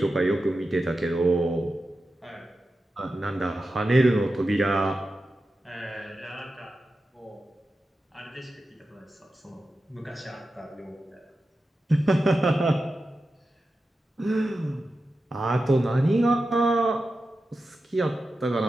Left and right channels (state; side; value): normal; both; correlation 0.91